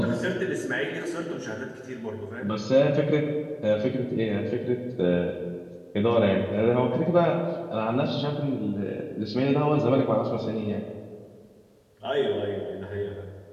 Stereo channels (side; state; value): both; identical; correlation 1.00